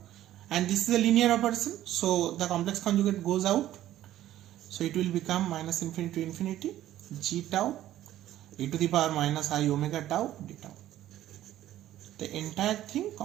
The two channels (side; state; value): left; quieter; 13.3 dB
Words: and this is a linear operation, so the complex conjugate goes out, so it will become minus infinity to infinity g tau e to the power minus I omega tau d tau, the entire thing